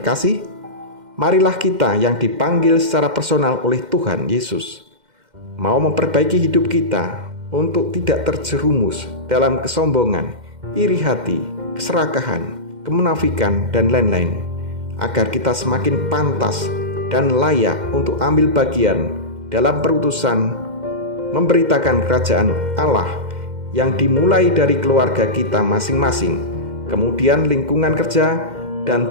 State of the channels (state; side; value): late; left; 2.1 ms